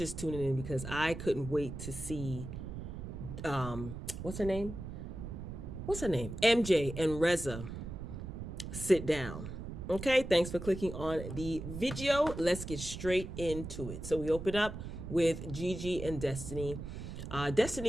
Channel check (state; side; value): noise; right; rumble, 8 dB below the sound